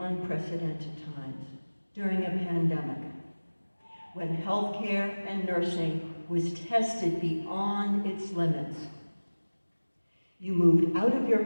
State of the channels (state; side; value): inverted; both; correlation -1.00